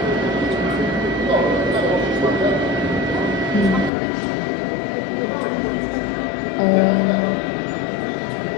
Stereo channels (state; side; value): drops out; right; at 3.9 s